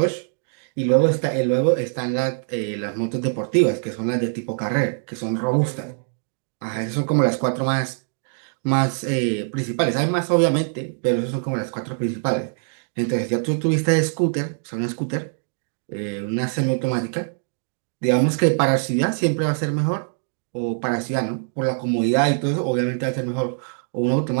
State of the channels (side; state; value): left; silent; digital silence